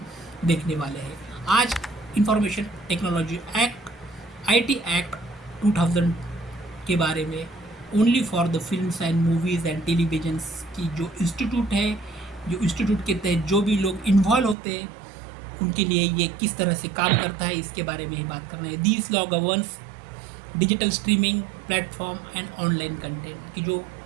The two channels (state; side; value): drops out; left; at 14.6 s